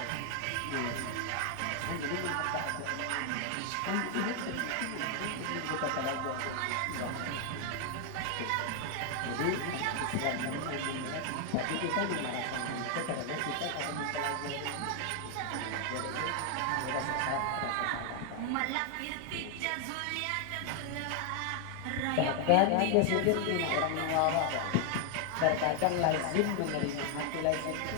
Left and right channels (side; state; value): both; different; correlation 0.00